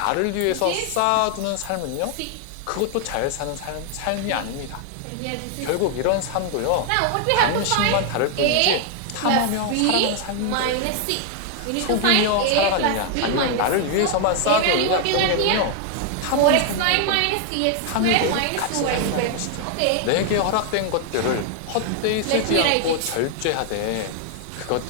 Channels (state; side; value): different; both; correlation 0.00